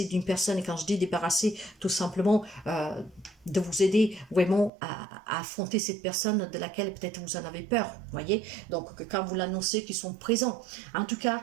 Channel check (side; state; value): left; drops out; at 4.7 s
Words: d'une personne? Et quand je dis débarrasser, tout simplement de vous aider vraiment à affronter cette personne de laquelle peut-être vous en avez peur, voyez. Donc quand vous l'annoncez qu'ils sont présents. En tout cas,